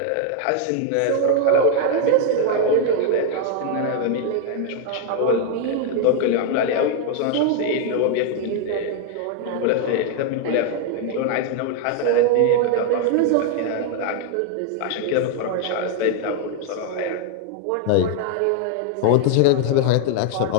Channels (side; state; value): both; different; correlation 0.00